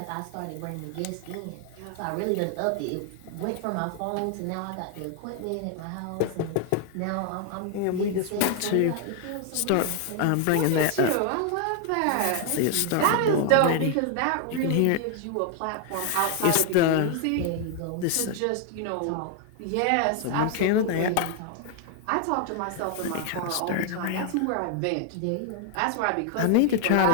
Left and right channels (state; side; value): different; both; correlation 0.00